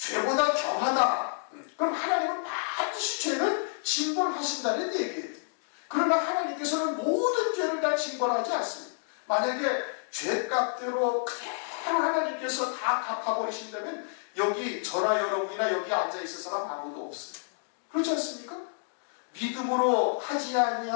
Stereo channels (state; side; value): silent; right; digital silence